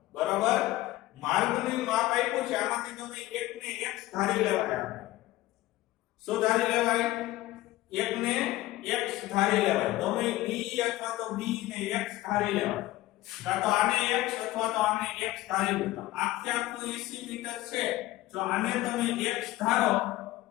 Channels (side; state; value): right; quieter; 17.0 dB